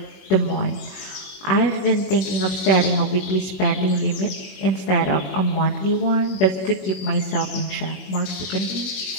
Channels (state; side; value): late; right; 21 ms